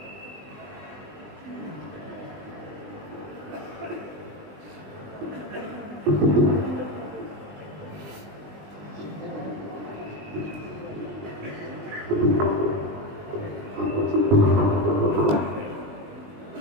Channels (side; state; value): left; late; 20 ms